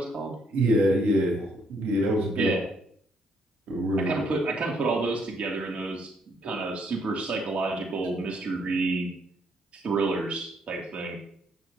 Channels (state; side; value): normal; both; correlation 0.71